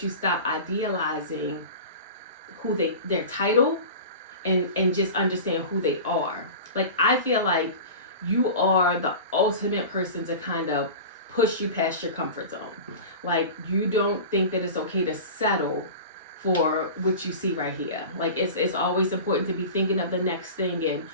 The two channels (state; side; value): inverted; both; correlation -0.33